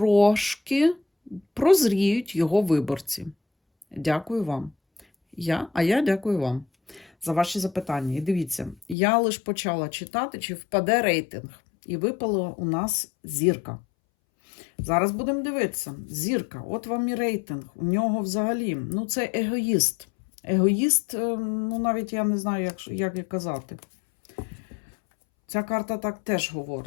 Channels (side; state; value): right; drops out; at 9.0 s